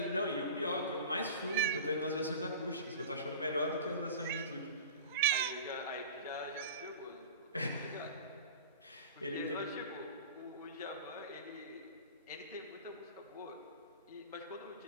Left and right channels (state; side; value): inverted; both; correlation -0.37